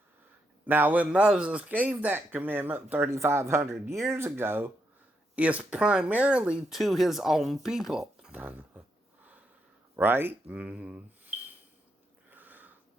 Now, when Moses gave that commandment 3,500 years ago, it's primarily to his own people, right?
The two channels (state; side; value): normal; both; correlation 0.80